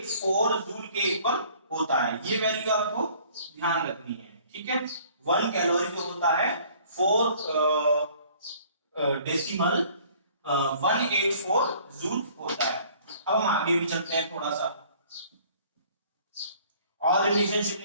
जूल के इक्वल होता है। ये वैल्यू आपको ध्यान रखनी है, ठीक है। 1 कैलोरी जो होता है 4.184 जूल होता है। अब हम आगे भी चलते हैं, थोड़ा सा और रिलेशनशिप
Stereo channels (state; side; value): inverted; both; correlation -0.55